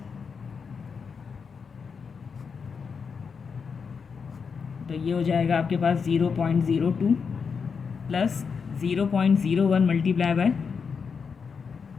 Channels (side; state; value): right; quieter; 5.8 dB